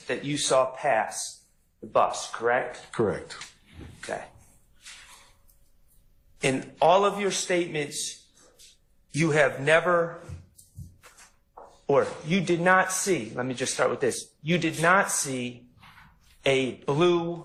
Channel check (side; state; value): both; identical; correlation 1.00